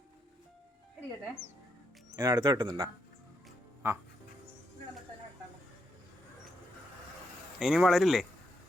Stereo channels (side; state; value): both; normal; correlation 0.80